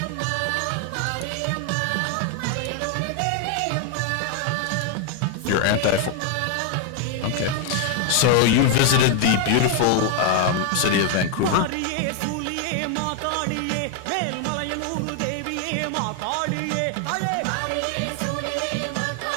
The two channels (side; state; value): both; different; correlation 0.00